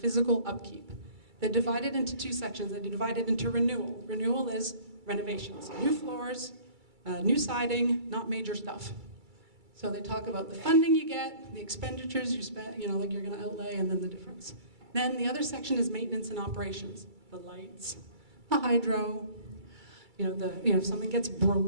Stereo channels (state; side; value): late; left; 2.3 ms